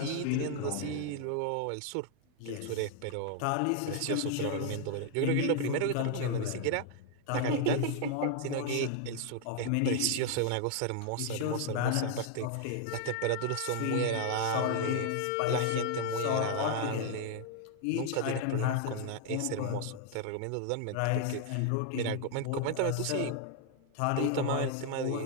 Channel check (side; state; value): both; different; correlation 0.00